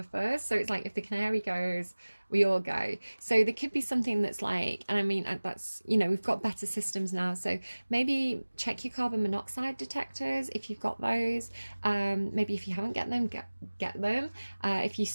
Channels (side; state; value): both; inverted; correlation -1.00